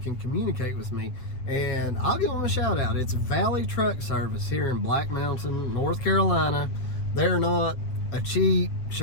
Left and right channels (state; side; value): late; right; 7.9 ms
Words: can communicate with me, and I'll give them a shout out. It's Valley Truck Service here in Black Mountain, North Carolina. They're not a cheap